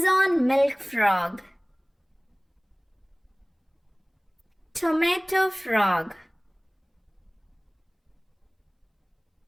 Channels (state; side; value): identical; both; correlation 1.00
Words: milk frog, tomato frog,